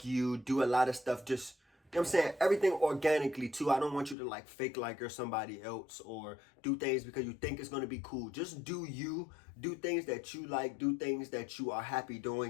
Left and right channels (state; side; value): drops out; right; at 4.2 s